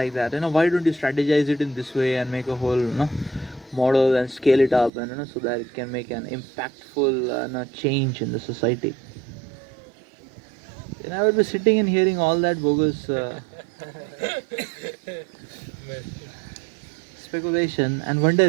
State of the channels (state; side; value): drops out; left; at 4.9 s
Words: that. Why don't you strategize it in this way and make a whole, model and scale it up, and so that it can make an impactful change in the society. Then I would be sitting and hearing all that bogus speculation and